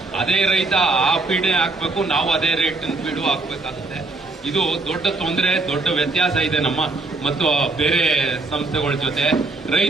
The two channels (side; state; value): left; quieter; 3.3 dB